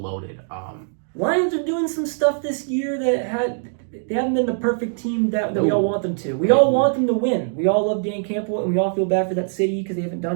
Lions are doing some stuff this year that they haven't been the perfect team that we all want them to. We all want them to win. We all love Dan Campbell, and we all feel bad for that city because they haven't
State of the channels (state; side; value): silent; left; digital silence